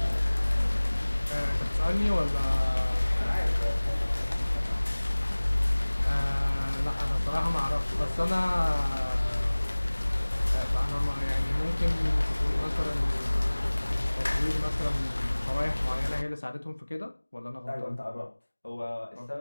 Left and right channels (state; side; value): inverted; both; correlation -1.00